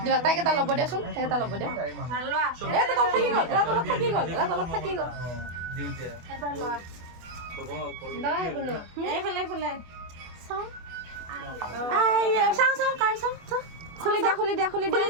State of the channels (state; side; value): late; left; 24 ms